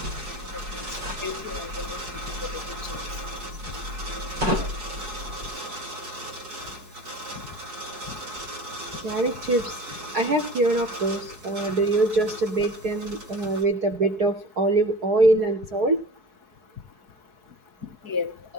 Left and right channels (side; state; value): left; late; 4.7 ms